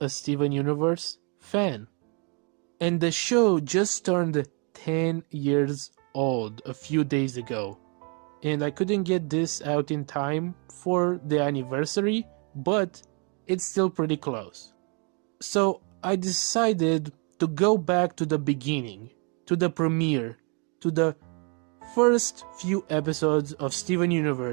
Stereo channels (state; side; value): quieter; left; 35.7 dB